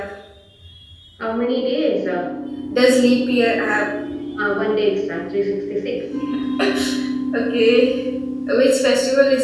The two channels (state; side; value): identical; both; correlation 1.00